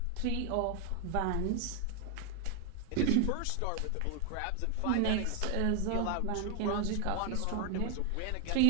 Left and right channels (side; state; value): both; different; correlation 0.00